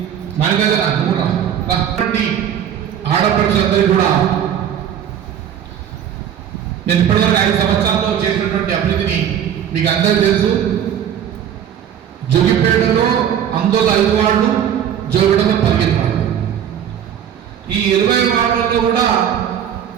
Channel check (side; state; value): left; quieter; 9.3 dB